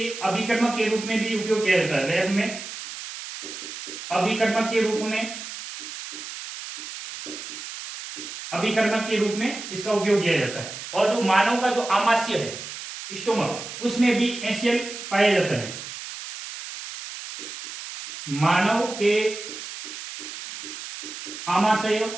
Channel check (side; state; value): right; noise; hiss, 10 dB below the sound